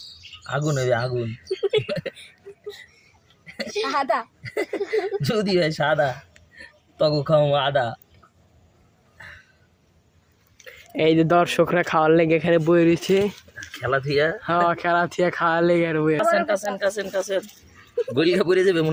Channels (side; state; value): both; identical; correlation 1.00